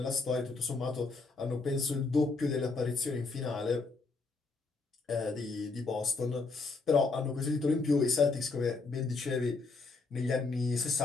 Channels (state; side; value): quieter; right; 4.0 dB